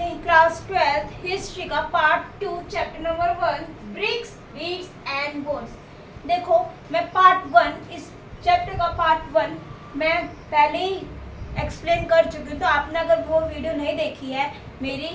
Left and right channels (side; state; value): both; identical; correlation 1.00